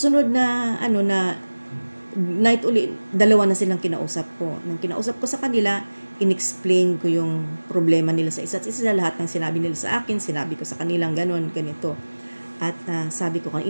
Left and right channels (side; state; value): both; inverted; correlation -1.00